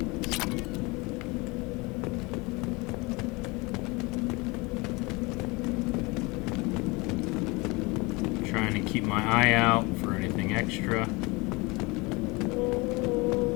Trying to keep my eye out for anything extra.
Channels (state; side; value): quieter; right; 25.4 dB